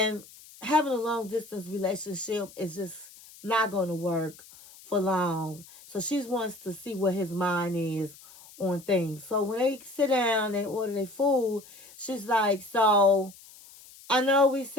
having a long distance relationship is just not going to work for long. So she wants to see what his mind is on things. So when they sit down, they order their food, she's like, so I know we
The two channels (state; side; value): noise; left; hiss, 21 dB below the sound